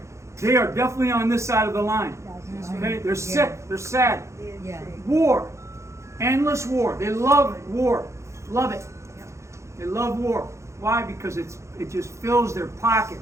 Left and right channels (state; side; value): late; left; 0.14 ms